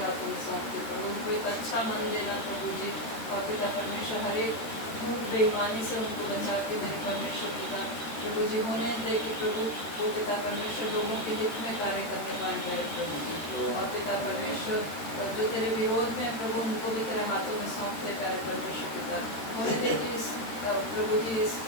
हाथों में सौंपते प्रभु, उनको एक अच्छा मन देना प्रभु जी, और पिता परमेश्वर हर एक झूठ बेईमानी से उनको बचा के मेरे परमेश्वर पिता प्रभु जी होने दे कि प्रभु वो पिता परमेश्वर लोगों के हित में कार्य करने पाए प्यारे प्रभु जी, और पिता परमेश्वर जो तेरे विरोध में प्रभु उनको भी तेरे हाथों में सौंपते प्यारे परमेश्वर पिता होने दे कि इस प्रभु जी इस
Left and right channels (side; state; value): right; late; 13 ms